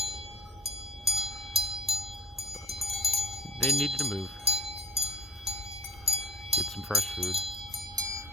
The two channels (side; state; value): both; normal; correlation 0.50